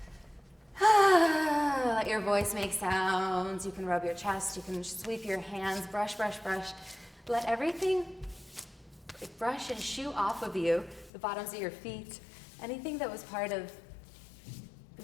Let your voice make sounds. You can rub your chest. You can sweep your hands. Brush, brush, brush. Let everything brush and shoo off of you, the bottoms of your feet, anything that was part of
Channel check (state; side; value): drops out; right; at 11.1 s